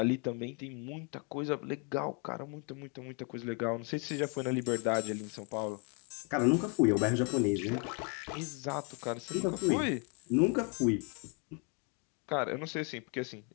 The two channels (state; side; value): quieter; right; 36.0 dB